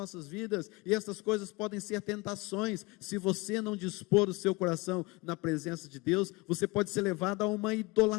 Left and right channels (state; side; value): quieter; right; 24.7 dB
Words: vidas, e essas coisas podem ser tentações. Se você não dispor o seu coração na presença de Deus, você pode ser levado a uma